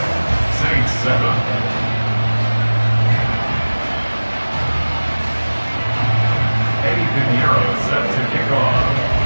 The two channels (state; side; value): inverted; both; correlation -1.00